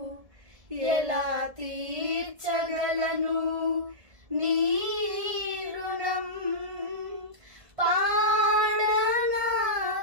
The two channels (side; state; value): left; late; 1.7 ms